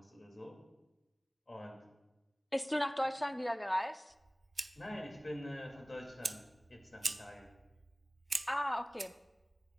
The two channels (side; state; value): both; normal; correlation 0.98